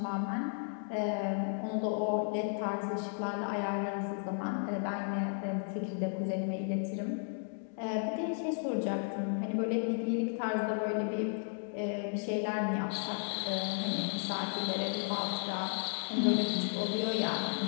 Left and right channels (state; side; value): silent; right; 55 dB below the other